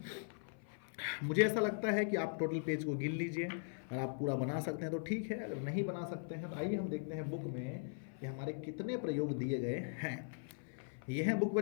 मुझे ऐसा लगता है कि आप टोटल पेज को गिन लीजिए। अगर आप पूरा बना सकते हैं तो ठीक है, अगर नहीं बना सकते हैं तो आइए हम देखते हैं बुक में कि हमारे कितने प्रयोग दिए गए हैं। यह है बुक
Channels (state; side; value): silent; right; 51 dB below the other